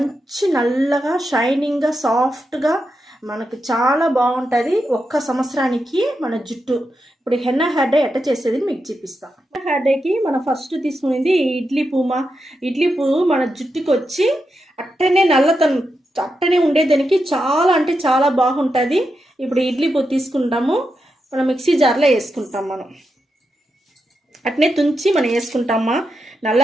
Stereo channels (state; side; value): normal; both; correlation 0.86